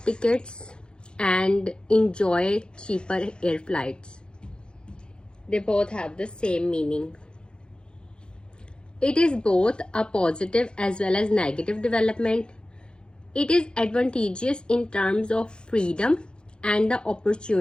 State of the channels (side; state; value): right; late; 0.050 ms